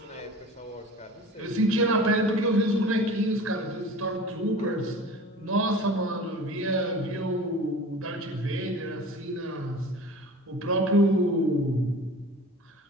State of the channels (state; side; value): normal; both; correlation 0.39